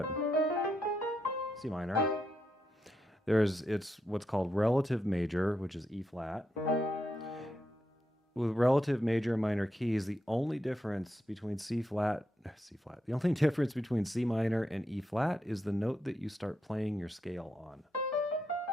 C minor. It's what's called relative major, which is E flat. With relative major and minor keys, the only difference between the only difference between C minor and E flat is the note that you start playing your scale on.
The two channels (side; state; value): both; normal; correlation 0.83